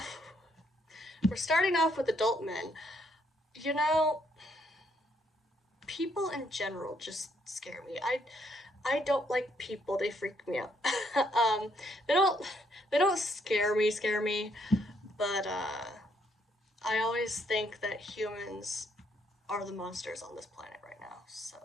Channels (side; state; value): both; normal; correlation 0.71